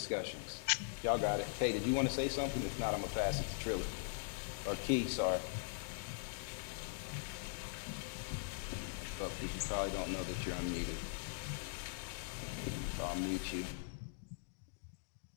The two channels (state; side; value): silent; right; digital silence